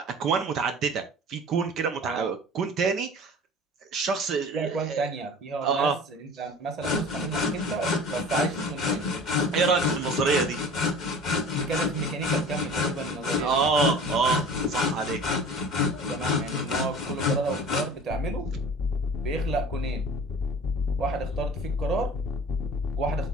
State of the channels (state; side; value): normal; both; correlation 0.42